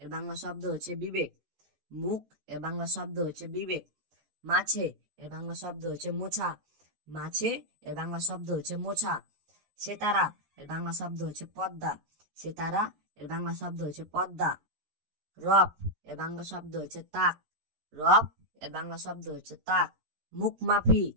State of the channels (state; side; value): late; left; 13 ms